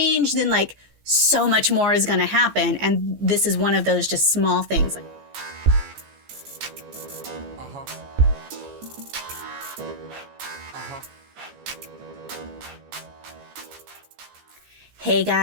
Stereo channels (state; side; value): late; left; 14 ms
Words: then like so much more is going to happen. And this is one of those just small things. Hey